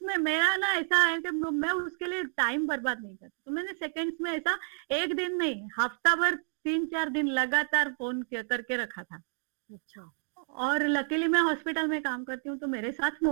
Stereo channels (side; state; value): left; silent; 55 dB below the other